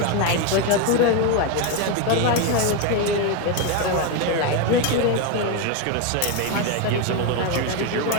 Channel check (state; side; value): different; both; correlation 0.02